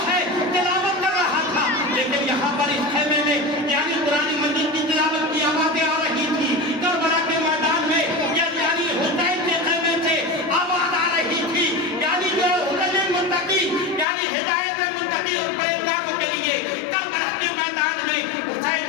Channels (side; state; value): right; drops out; at 14.1 s